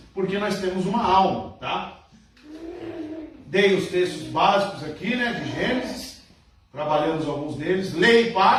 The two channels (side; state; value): both; identical; correlation 1.00